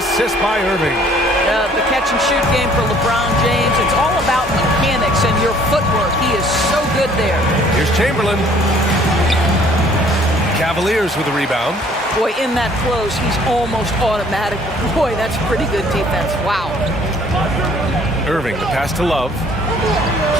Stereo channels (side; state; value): both; normal; correlation 0.58